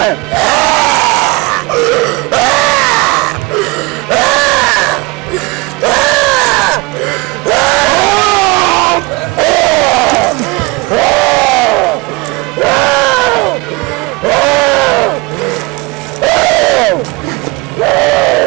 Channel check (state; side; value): quieter; left; 24.8 dB